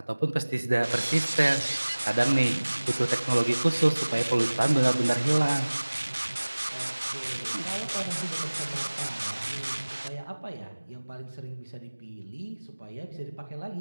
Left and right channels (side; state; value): both; inverted; correlation -1.00